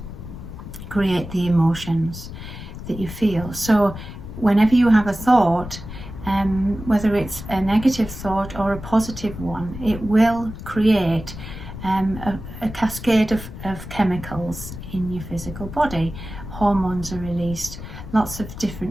create the emotions that you feel. So whenever you have a thought, whether it's a negative thought or a positive one, it will create a cascade of chemicals in your physical body. Hormones are released, lots of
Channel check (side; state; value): left; noise; rumble, 11 dB below the sound